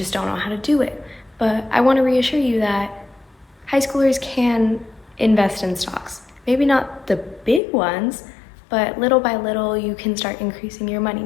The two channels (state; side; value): drops out; right; at 7.6 s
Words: don't know how to do it. But I want to reassure you that high schoolers can invest in stocks. Maybe not the big ones, but little by little you can start increasing your money.